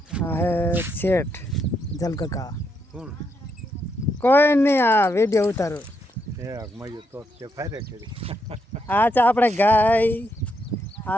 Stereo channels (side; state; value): both; normal; correlation 0.79